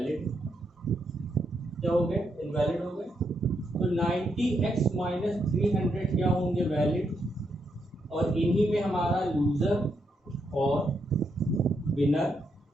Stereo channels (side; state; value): both; normal; correlation 0.79